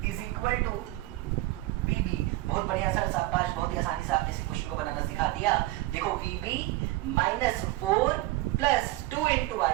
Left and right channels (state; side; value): quieter; left; 18.4 dB